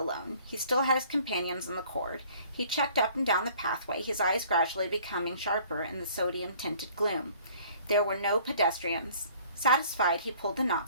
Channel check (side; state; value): both; inverted; correlation -0.54